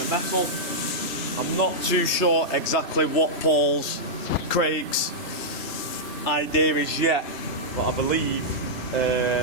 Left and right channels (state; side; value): late; right; 3.0 ms